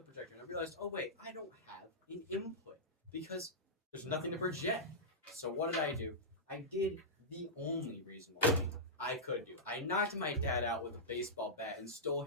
projector and I realized, oh wait, I don't have an input because there's nothing to project. So what did I do? I did the only reasonable thing I could do. I knocked my dad out with a baseball bat and stole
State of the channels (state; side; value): normal; both; correlation -0.12